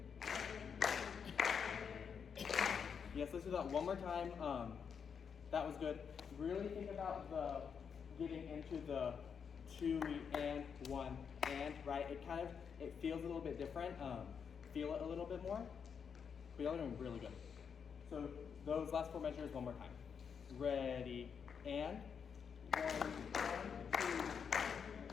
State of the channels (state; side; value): quieter; right; 6.8 dB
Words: Yes, let's do that one more time. That was good. Really think about the getting into the 2E and 1 and, right? It feels a little bit different. Feel it a little bit more. But y'all are doing really good. So those last 4 measures one more time. Ready and 1, 2.